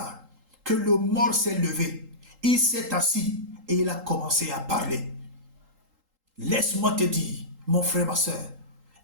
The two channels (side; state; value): left; late; 3.8 ms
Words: que le mort s'est levé. Il s'est assis et il a commencé à parler. Laisse-moi te dire, mon frère, ma soeur,